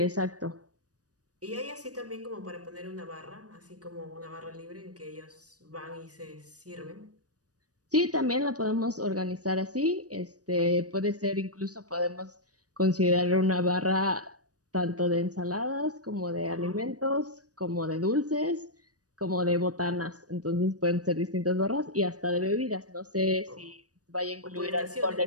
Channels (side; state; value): left; late; 0.67 ms